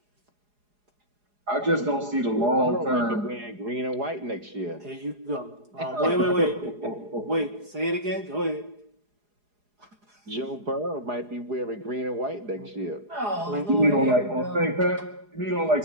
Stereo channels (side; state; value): left; late; 4.8 ms